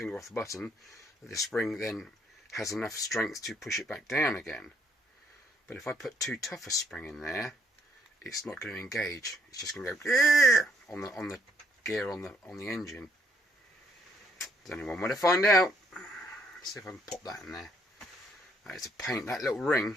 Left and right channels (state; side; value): normal; both; correlation 0.69